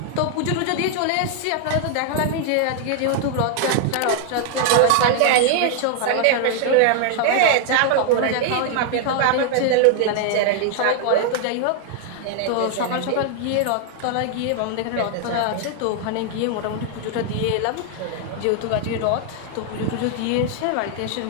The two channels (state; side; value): different; both; correlation 0.00